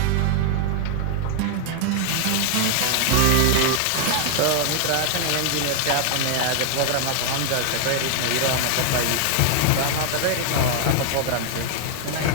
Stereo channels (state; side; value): different; both; correlation 0.00